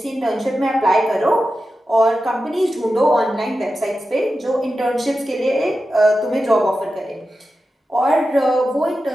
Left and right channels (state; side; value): normal; both; correlation 0.91